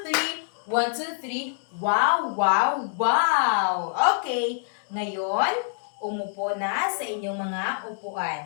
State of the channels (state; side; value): silent; right; 61 dB below the other